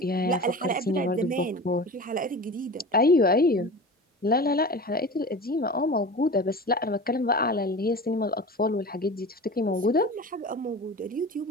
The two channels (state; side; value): normal; both; correlation 0.33